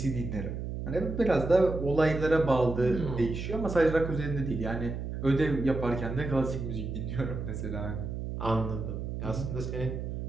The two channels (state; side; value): noise; right; hum, 5 dB below the sound